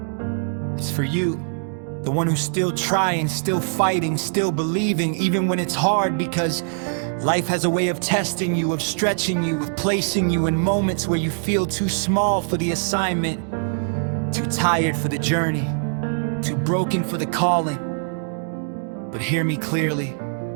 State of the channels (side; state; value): left; silent; digital silence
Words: It's for you, the one who's still trying, still fighting, still believing, even when it's hard, because life has a way of testing you, of stretching you, of placing you in moments where you feel too small for the assignment, too tired for the journey, too broken for the calling. But hear me clearly,